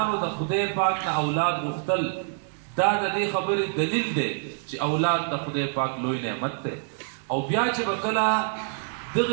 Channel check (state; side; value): silent; left; digital silence